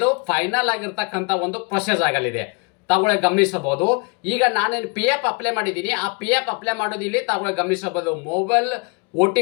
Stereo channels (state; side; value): quieter; right; 33.0 dB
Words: ಫೈನಲ್ ಆಗಿರ್ತಕ್ಕಂಥ ಒಂದು ಪ್ರೊಸೆಸ್ ಆಗಲಿದೆ. ತಾವುಗಳು ಗಮನಿಸಬಹುದು ಈಗ ನಾನೇನು PF ಅಪ್ಲೈ ಮಾಡಿದ್ದೀನಿ ಆ PF ಅಪ್ಲೈ ಮಾಡೋದು ಇಲ್ಲಿ ತಾವುಗಳು ಗಮನಿಸಬಹುದು mobile